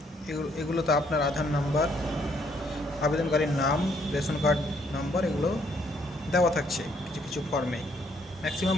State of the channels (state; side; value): normal; both; correlation 0.68